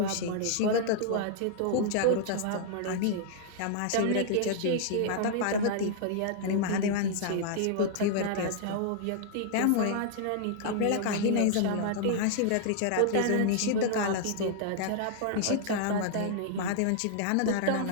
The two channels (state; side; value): different; both; correlation -0.01